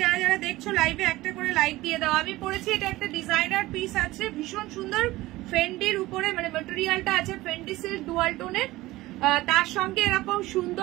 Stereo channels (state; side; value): quieter; left; 18.3 dB